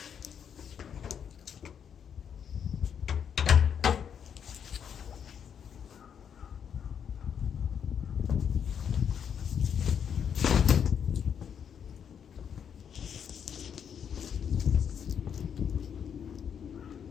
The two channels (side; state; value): right; quieter; 7.9 dB